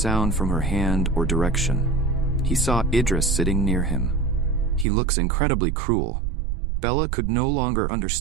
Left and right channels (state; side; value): drops out; left; at 4.9 s